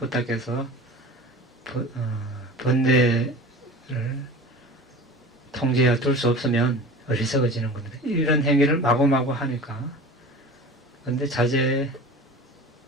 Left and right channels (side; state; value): both; normal; correlation 0.37